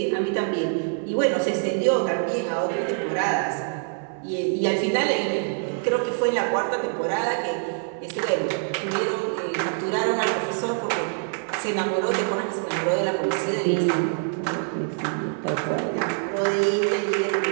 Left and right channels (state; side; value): silent; left; 59 dB below the other